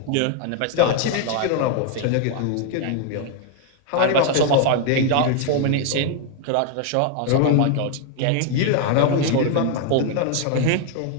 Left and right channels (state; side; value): different; both; correlation 0.00